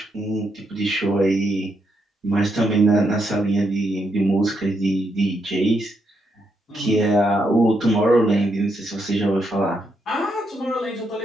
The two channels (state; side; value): normal; both; correlation 0.79